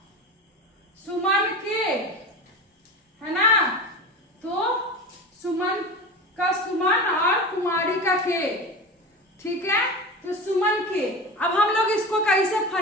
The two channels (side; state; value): both; normal; correlation 0.29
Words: सुमन के, है ना, तो सुमन का सुमन और कुमारी का के, ठीक है, तो सुमन के। अब हम लोग इसको कैसे